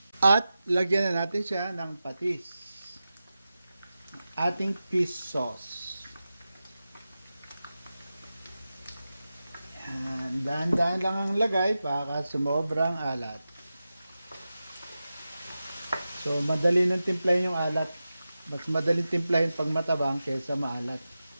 At lagyan na natin siya ng patis, ating fish sauce. Dahan-dahan lang ang lagay para sumobrang alat. So, madali nang timplahin yung alat. Mas madaling timplahin pag matabang kaysa maalat.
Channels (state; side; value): inverted; both; correlation -0.93